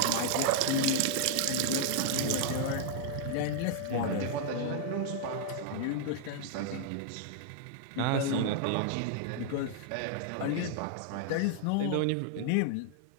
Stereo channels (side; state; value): both; different; correlation 0.00